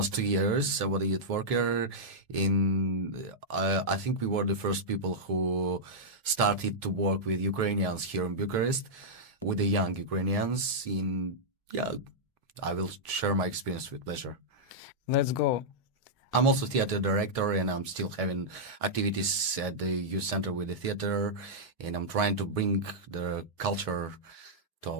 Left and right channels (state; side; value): normal; both; correlation -0.08